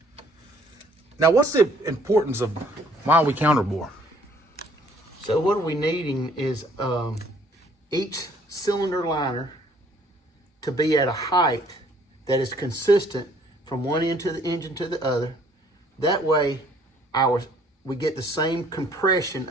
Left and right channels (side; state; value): both; normal; correlation 0.61